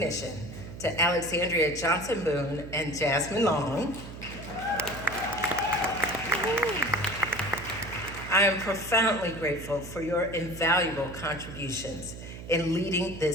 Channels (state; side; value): noise; right; hum, 12 dB below the sound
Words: to Alexandria Johnson Boone and Jasmine Long. I am profoundly grateful for your invaluable contributions in leading